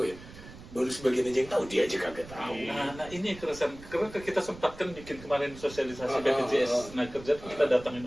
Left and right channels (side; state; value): right; noise; rumble, 17 dB below the sound